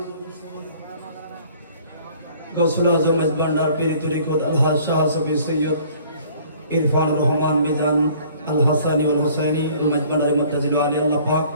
गौसुल आजम भांडार पीर तरीक़त अलहाज शाह सफी सैयद इरफान रहमान मिजान अल हसानी वल हुसैनी भांडार मुत्ताजिल आली अल्लाह पाक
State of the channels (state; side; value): inverted; both; correlation -0.54